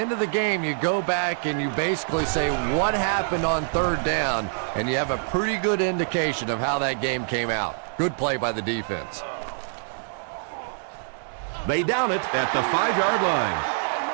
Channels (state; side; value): silent; left; 62 dB below the other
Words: of the game, you go back and you basically say what happened on third down, and you have a pretty good indication of how that game came out. Good play by the defense. They down it at the 5-yard line.